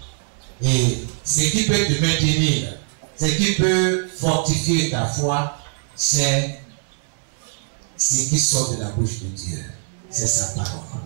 et ce qui peut te maintenir, ce qui peut fortifier ta foi, c'est ce qui sort de la bouche de Dieu. C'est sa parole.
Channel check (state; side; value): silent; left; 64 dB below the other